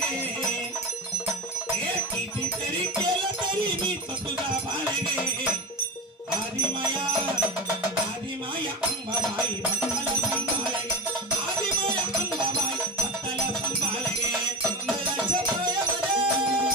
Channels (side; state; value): both; normal; correlation 0.28